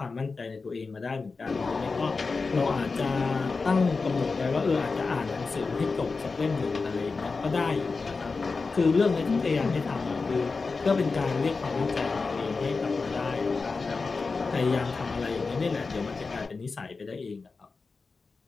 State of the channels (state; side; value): quieter; right; 4.3 dB